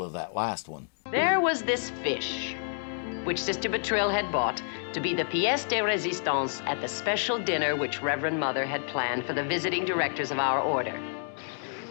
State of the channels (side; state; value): right; silent; digital silence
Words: of that last one. There was this fish, which Sister Bertrille had bought to be the pièce de résistance at the special dinner which Reverend Mother had planned for the visiting directors of our order.